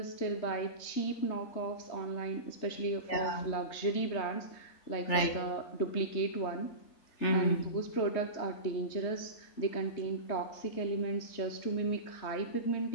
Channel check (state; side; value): late; right; 3.4 ms